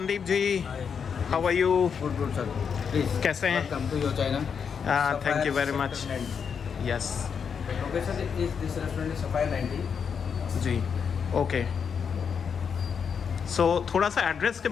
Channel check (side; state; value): right; quieter; 6.7 dB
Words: ji, how are you? Good sir, please कैसे हैं? Welcome to your China. Thank you very much. Yes, location is this restaurant is Sapphire 90 जी, okay. So थोड़ा सा एड्रेस के